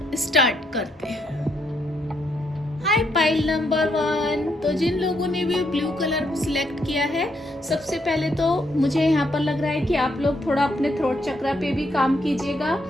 स्टार्ट करते हैं। हाय पाइल नंबर 1। तो जिन लोगों ने भी ब्लू कलर सिलेक्ट किया है, सबसे पहले तो मुझे यहाँ पर लग रहा है कि आप लोग थोड़ा अपने थ्रोट चक्रा पे भी काम कीजिएगा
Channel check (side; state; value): both; normal; correlation 0.75